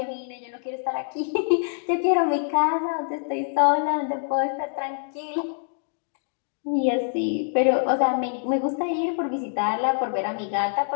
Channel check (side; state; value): right; silent; 62 dB below the other